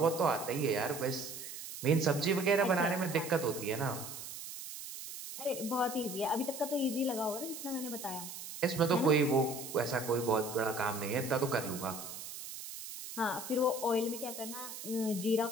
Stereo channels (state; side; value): noise; right; hiss, 10 dB below the sound